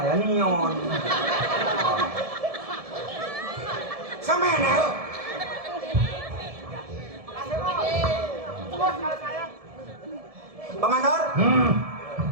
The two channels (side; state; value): left; late; 1.7 ms